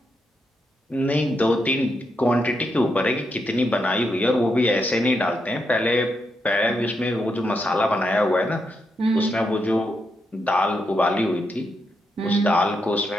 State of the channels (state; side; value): normal; both; correlation 0.82